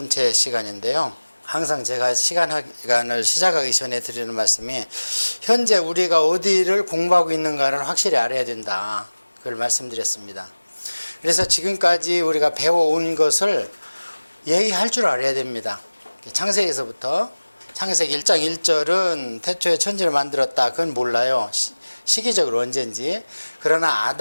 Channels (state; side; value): inverted; both; correlation -1.00